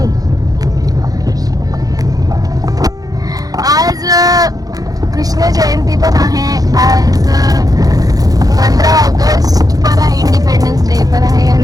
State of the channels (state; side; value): late; left; 0.18 ms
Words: आज कृष्ण जयंती पण आहे. आज 15 ऑगस्ट पण आहे, इंडिपेंडन्स डे पण आहे